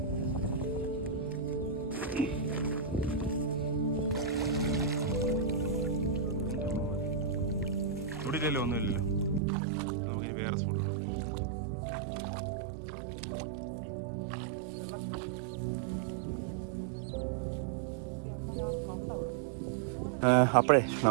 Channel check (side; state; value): left; drops out; at 9.4 s